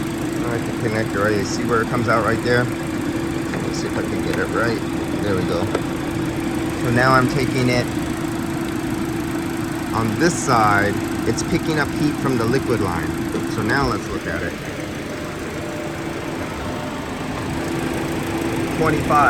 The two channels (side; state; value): both; identical; correlation 1.00